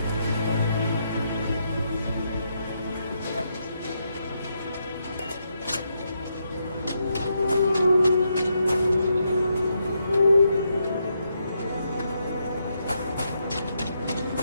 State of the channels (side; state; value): both; inverted; correlation -0.80